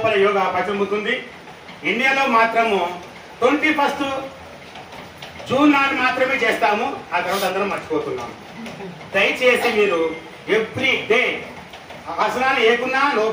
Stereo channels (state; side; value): identical; both; correlation 1.00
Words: యోగా ప్రతిబింబుతుంది. ఇండియాలో మాత్రము 21 జూన్ నాడు మాత్రమే చేస్తాము, ఆ తర్వాత అందరం మర్చిపోతున్నాము. దయచేసి మీరు ఎవ్రీ డే ఆసనాలు ఏకున్నా నో